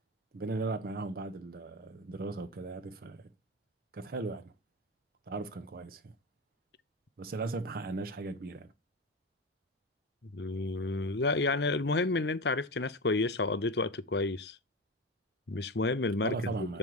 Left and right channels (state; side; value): normal; both; correlation 0.22